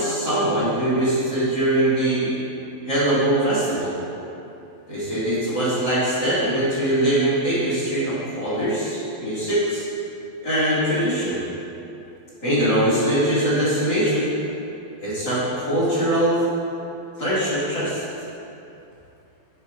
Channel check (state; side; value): late; right; 12 ms